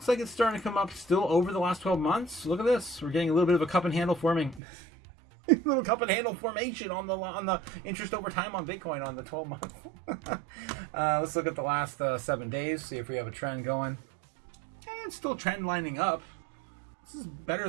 like it's starting to come up still over the last 12 months. Look at this. We're getting a little bit of a cup and handle forming. Little cup and handle formation on the interest over time on Bitcoin on the 12 month. Let's look at the last 7 days, see if we have a trend going. It's still trend lining up. This is better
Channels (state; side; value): drops out; left; at 4.6 s